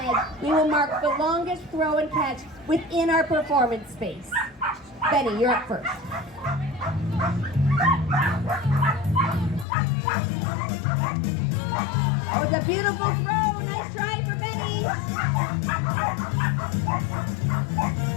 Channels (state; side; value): drops out; right; at 9.7 s